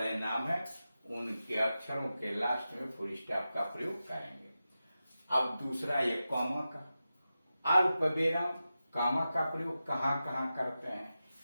नाम है उनके अक्षरों के लास्ट में फुल स्टॉप का प्रयोग करेंगे। अब दूसरा ये कॉमा का, अल्प विराम, कॉमा का प्रयोग कहाँ कहाँ करते हैं,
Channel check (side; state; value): both; inverted; correlation -0.92